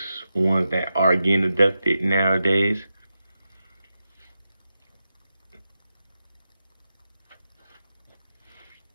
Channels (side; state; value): both; inverted; correlation -0.90